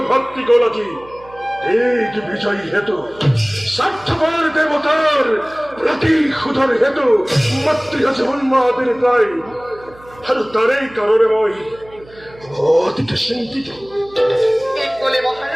ভক্তি গলতি এই বিজয়ী হেতু স্বার্থপর দেবতার প্রতিশোধৰ হেতু মাতৃ আছে উন্মাদের প্রায় আৰু তাৰেই কারণে মই অতিকে চিন্তিত ঠিক ক'লে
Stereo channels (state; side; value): noise; right; hum, 23 dB below the sound